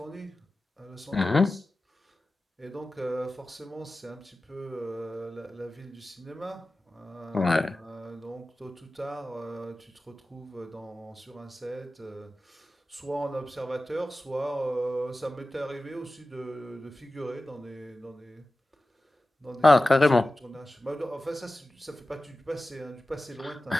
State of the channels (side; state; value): both; normal; correlation 0.95